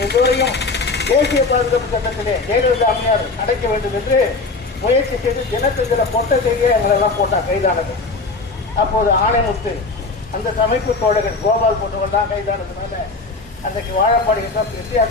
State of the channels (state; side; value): quieter; right; 3.8 dB